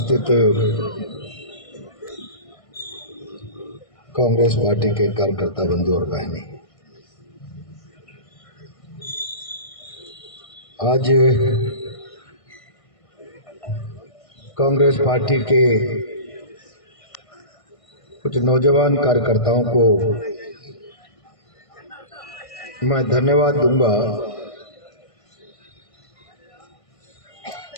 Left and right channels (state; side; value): late; right; 1.6 ms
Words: कांग्रेस पार्टी के कार्यकर्ता बंधु और बहनें, आज कांग्रेस पार्टी के कुछ नौजवान कार्यकर्ताओं को मैं धन्यवाद दूंगा